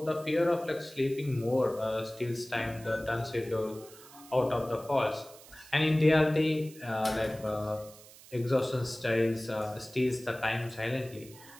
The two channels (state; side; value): noise; right; hiss, 20 dB below the sound